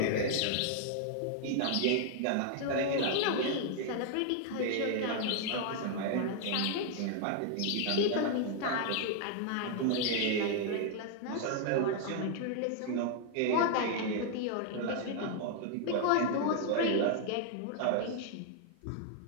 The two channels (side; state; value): both; different; correlation 0.00